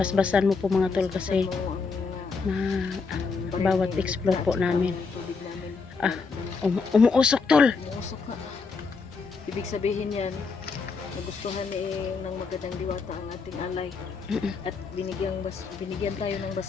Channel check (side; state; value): right; quieter; 4.7 dB